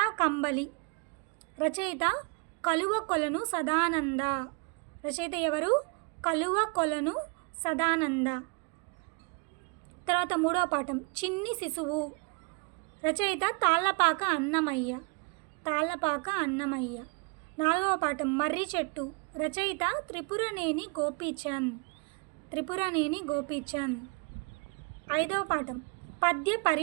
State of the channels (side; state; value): left; quieter; 31.6 dB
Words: కంబలి. రచయిత కలువకొలను సదానంద. రచయిత ఎవరు? కలువకొలను సదానంద. తర్వాత మూడవ పాఠం చిన్ని శిశువు. రచయిత తాళ్ళపాక అన్నమయ్య. తాళ్ళపాక అన్నమయ్య. నాలుగవ పాఠం మర్రి చెట్టు. రచయిత త్రిపురనేని గోపీచంద్. త్రిపురనేని గోపీచంద్. ఐదవ పాఠం పద్య